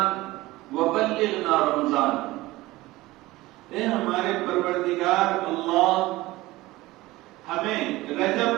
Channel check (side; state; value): left; quieter; 18.9 dB